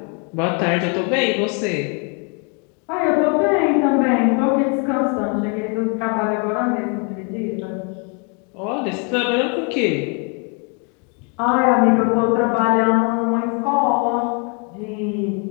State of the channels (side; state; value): right; quieter; 36.3 dB